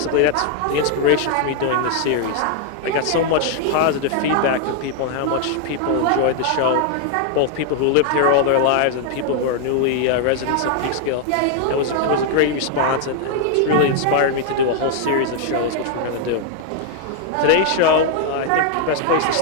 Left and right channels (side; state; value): both; different; correlation 0.00